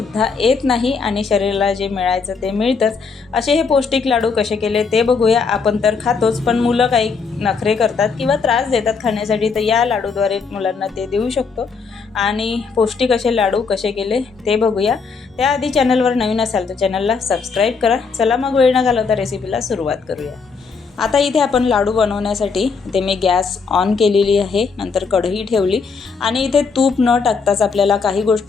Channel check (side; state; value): right; quieter; 5.1 dB